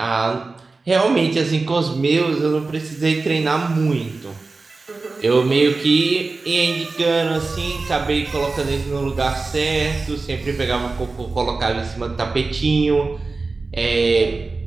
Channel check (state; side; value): quieter; left; 3.8 dB